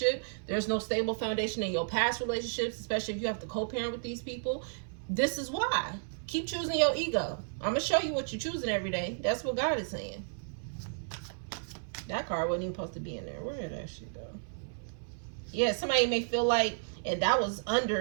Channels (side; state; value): left; silent; 56 dB below the other